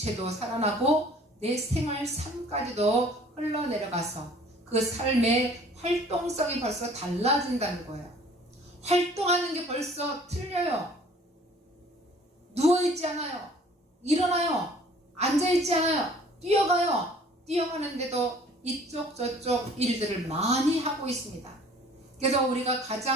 살아나고 내 생활 삶까지도 흘러내려가서 그 삶의 활동성이 벌써 달라진다는 거예요. 활동하는 게 벌써 틀려요. 누워있지 않아요. 일어나요. 앉아있지 않아요. 뛰어가요. 뛰어가는데도 이쪽 저쪽 일들을 많이 하고 있습니다. 그래서 우리가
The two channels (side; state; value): both; normal; correlation 0.53